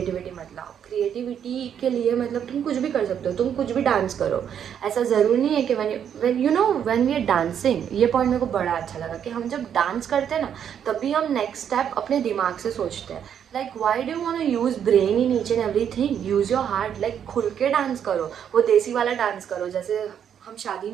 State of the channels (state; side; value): quieter; left; 8.7 dB